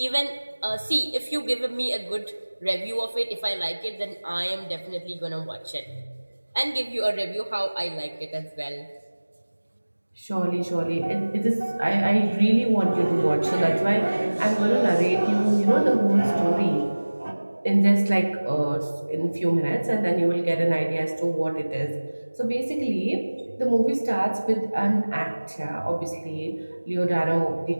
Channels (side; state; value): both; inverted; correlation -1.00